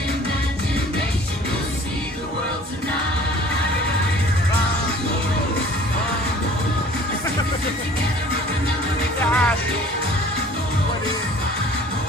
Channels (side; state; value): both; normal; correlation 0.50